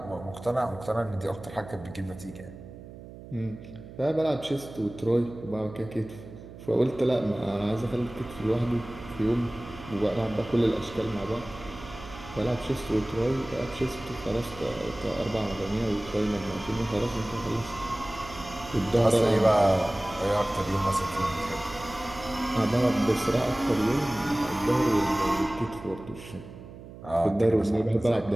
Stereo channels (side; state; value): right; noise; hum, 15 dB below the sound